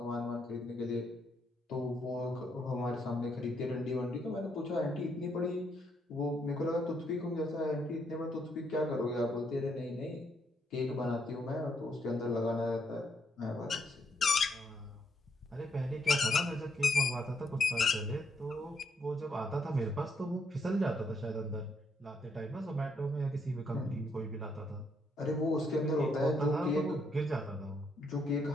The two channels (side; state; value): both; normal; correlation 0.74